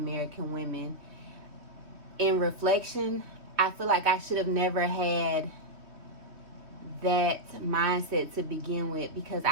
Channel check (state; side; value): late; left; 3.1 ms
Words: women, in reflection, I feel like I should have never had that mindset to begin with, because